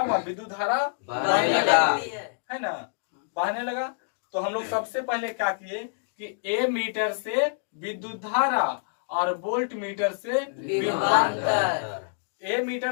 विद्युत धारा है ना, बहने लगा। तो हम लोग सबसे पहले क्या किए कि ए मीटर से विद्युत धारा और वोल्ट मीटर से विभवांतर, ए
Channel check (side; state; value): right; silent; digital silence